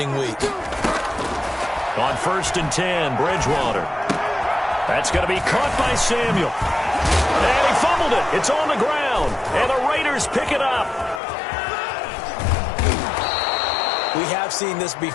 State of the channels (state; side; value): drops out; right; at 11.2 s